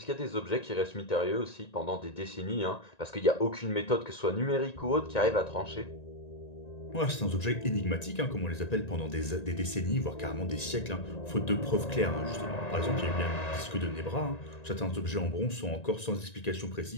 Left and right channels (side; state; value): right; late; 1.9 ms